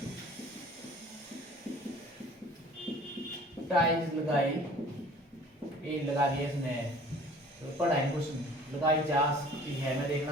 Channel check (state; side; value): normal; both; correlation 0.49